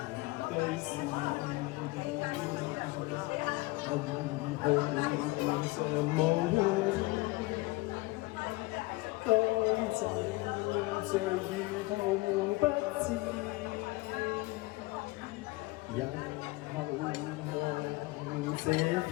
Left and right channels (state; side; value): quieter; right; 22.7 dB